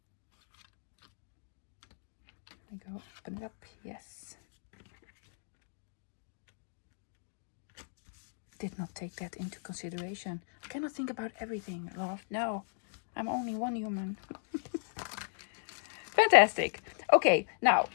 There we go. Open it up. Yes. Did not take that into consideration. I cannot think about everything, love. No, I'm only one human. Fantastic. Okay, now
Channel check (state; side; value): silent; right; digital silence